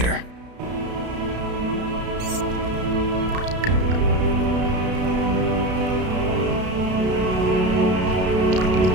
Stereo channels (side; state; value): left; late; 32 ms